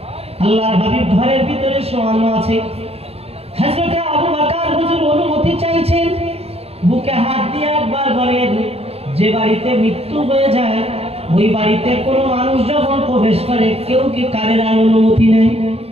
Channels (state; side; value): late; left; 0.29 ms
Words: আল্লাহর হাবিব ঘরের ভিতরে শোয়ানো আছে। হযরত আবু বকর হুজুর অনুমতি চাইছেন, বুকে হাত দিয়ে একবার বলেন, যে বাড়িতে মৃত্যু হয়ে যায় ওই বাড়িতে কোনো মানুষ যখন প্রবেশ করে কেউ কি কারের অনুমতি